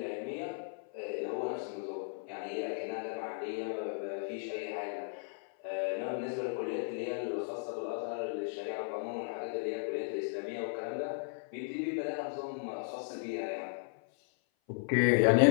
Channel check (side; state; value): right; silent; 54 dB below the other